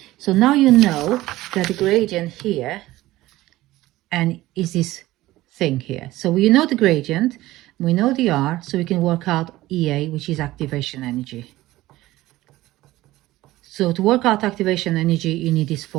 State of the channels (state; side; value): quieter; left; 17.1 dB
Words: so now you know that the gradient here and is this thing here. So we know the gradient, we know the R, so we can work out EA, which is activation energy. So to work out activation energy, you need this